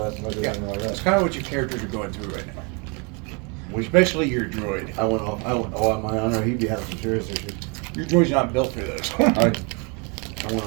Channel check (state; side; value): quieter; left; 32.8 dB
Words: time I did Yeah, anything like that's that. kind of what your characters are going through right now. Especially your droid. I went off. Oh, my honor, he'd be having some serious issues. Your droid's not built for this. I went